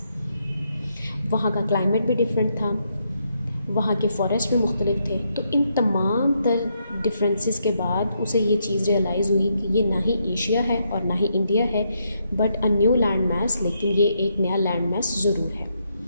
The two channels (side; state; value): both; inverted; correlation -0.78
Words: वहाँ का क्लाइमेट भी डिफरेंट था, वहाँ के फॉरेस्ट भी मुख्तलिफ थे। तो इन तमाम तर डिफरेंसेस के बाद उसे ये चीज़ रियलाइज़ हुई कि ये ना ही एशिया है और ना ही इंडिया है बट अ न्यू लैंड मास, लेकिन ये एक नया लैंड मास ज़रूर है।